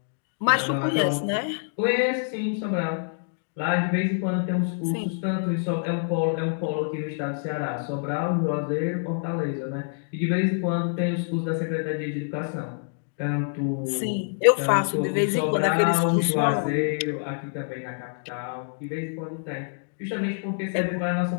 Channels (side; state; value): right; silent; digital silence